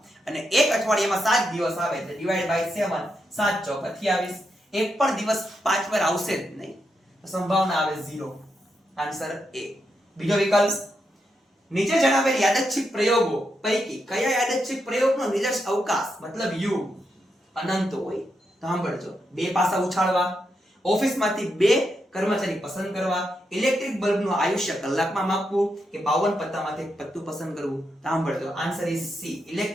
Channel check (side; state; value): both; normal; correlation 0.83